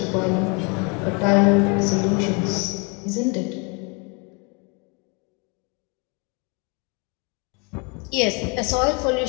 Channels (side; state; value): right; quieter; 32.3 dB